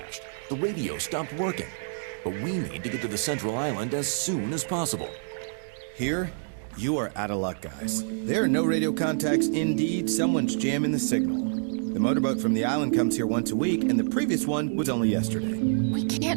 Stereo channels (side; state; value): left; silent; digital silence